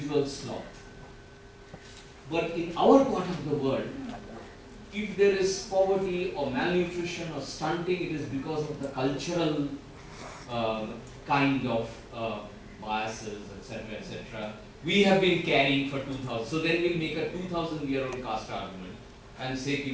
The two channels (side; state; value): both; identical; correlation 1.00